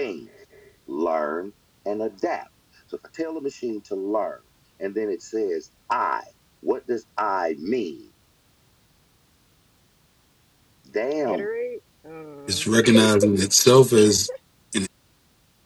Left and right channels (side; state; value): both; identical; correlation 1.00